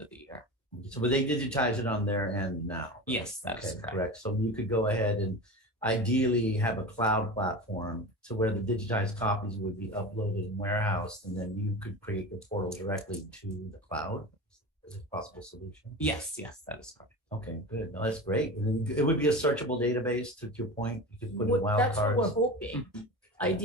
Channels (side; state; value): both; normal; correlation 0.29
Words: of the year. So but they digitize it on their end now? Yes, that is correct. So you could go ahead and ideally have a cloud platform to where the digitized copies would be uploaded and warehoused, and then you could create the portal directly to the cloud. Is it a possible solution? Yes, that is correct. Okay, good. No, that's great. And then it would be a searchable database, to your point. You could put in wildcards. That's what we're hoping.